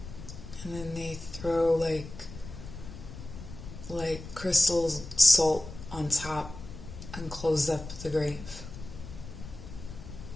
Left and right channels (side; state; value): left; noise; rumble, 12 dB below the sound